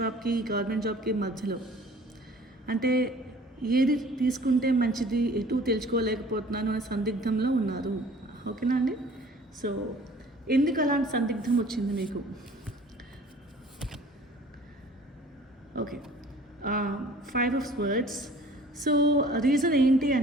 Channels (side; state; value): both; normal; correlation 0.50